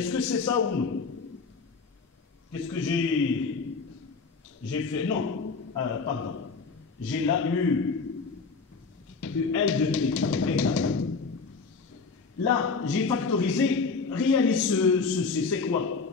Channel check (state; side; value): quieter; right; 4.6 dB